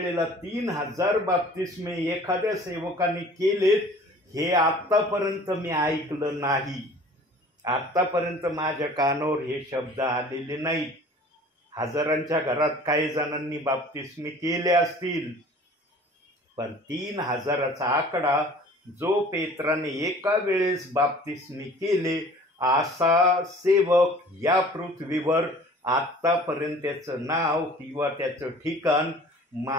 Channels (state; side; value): normal; both; correlation 0.48